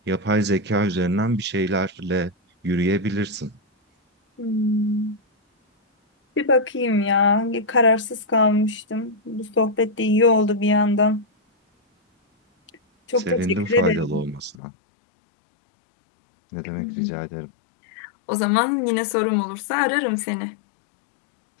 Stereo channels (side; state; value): right; drops out; at 14.6 s